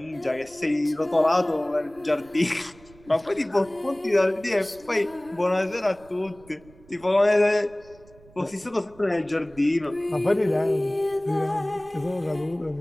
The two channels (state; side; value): noise; right; rumble, 25 dB below the sound